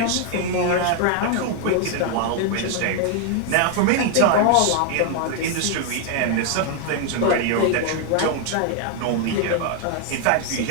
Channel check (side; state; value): both; different; correlation 0.01